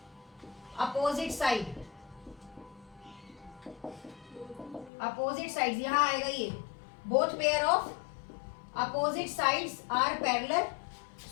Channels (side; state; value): right; drops out; at 4.9 s